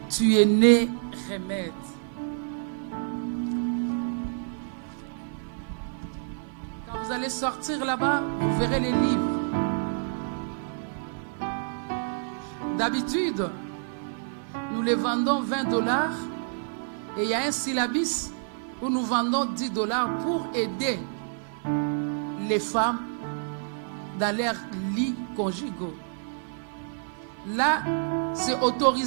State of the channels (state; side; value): silent; left; 57 dB below the other